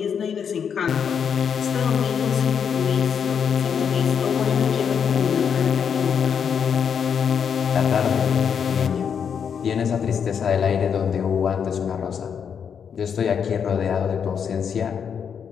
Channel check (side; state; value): right; quieter; 7.3 dB